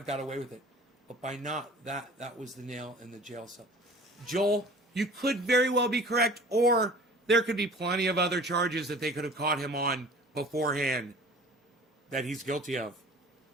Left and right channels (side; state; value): both; normal; correlation 0.44